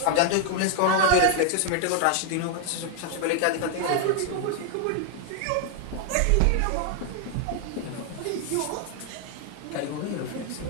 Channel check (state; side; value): different; both; correlation 0.00